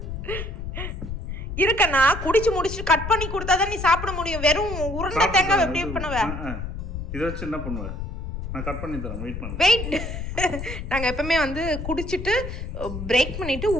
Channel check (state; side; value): noise; left; rumble, 6 dB below the sound